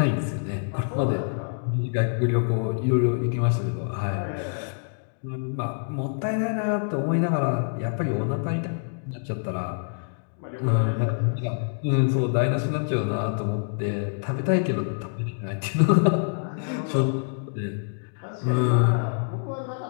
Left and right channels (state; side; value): silent; right; digital silence